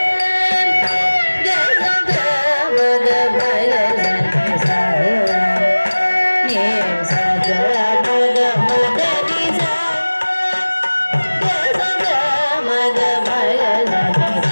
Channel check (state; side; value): inverted; both; correlation -1.00